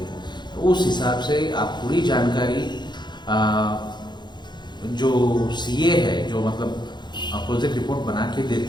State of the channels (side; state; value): right; late; 0.21 ms